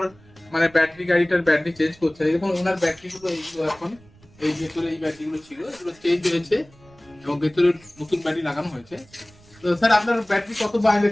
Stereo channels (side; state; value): right; noise; rumble, 27 dB below the sound